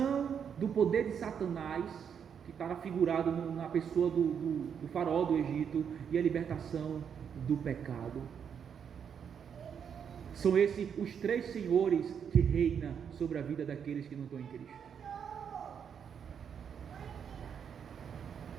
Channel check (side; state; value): left; quieter; 7.6 dB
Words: do poder de Satanás, que está figurado na pessoa do faraó do Egito, e a libertação do pecado. São esses os 3 senhores que reinam sobre a vida daqueles que não estão em Cristo.